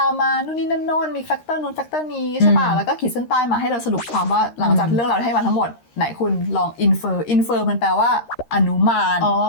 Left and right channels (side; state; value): right; late; 13 ms